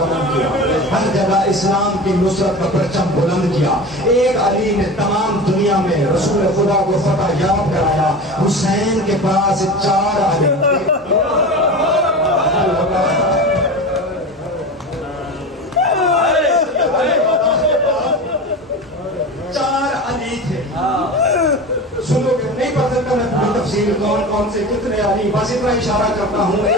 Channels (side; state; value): both; normal; correlation 0.29